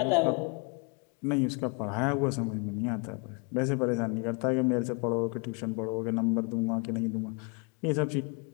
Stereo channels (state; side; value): quieter; right; 33.0 dB